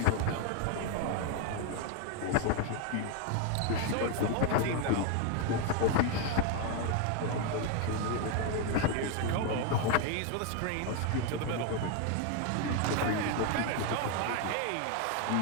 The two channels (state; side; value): different; both; correlation 0.01